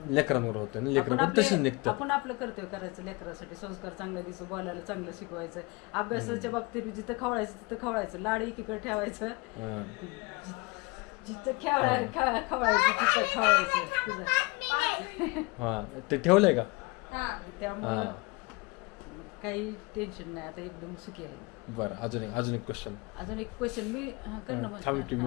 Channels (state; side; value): quieter; right; 25.9 dB